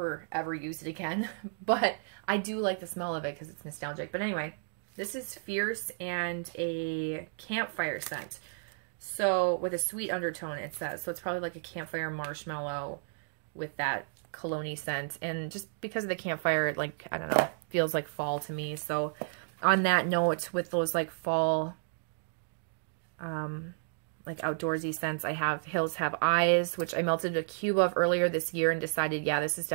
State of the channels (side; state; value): left; silent; digital silence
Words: use it again. But I do like the smell of it because it's nostalgic. But anyway, this is Fierce and a campfire scent. So with a sweet undertone, it says. So it's probably like a campfire marshmallow with that cologne-y scent. And just because of the campfire, it, like, I don't know, feels like fall to me. So on that note, with those like fall, like outdoorsy scents, I have Hills Have Eyes, which I melted a cube of earlier this year and decided, yeah, this is